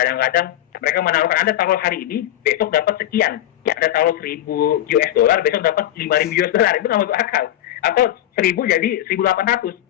mereka menawarkan Anda taruh hari ini, besok dapat sekian. Ya, Anda taruh 1.000 US dollar, besok dapat 5.000 US dollar. Itu nggak masuk akal. Atau 1.000 jadi 1.800,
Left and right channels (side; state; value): right; quieter; 12.8 dB